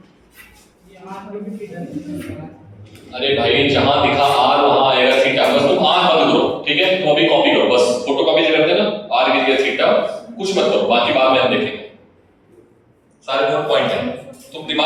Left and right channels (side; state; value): both; identical; correlation 1.00